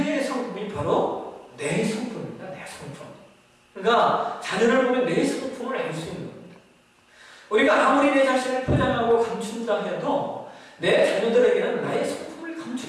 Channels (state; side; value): identical; both; correlation 1.00